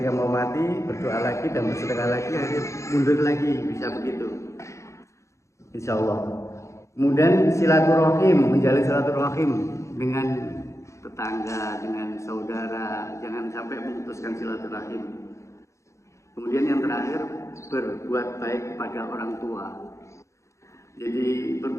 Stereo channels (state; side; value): late; right; 0.14 ms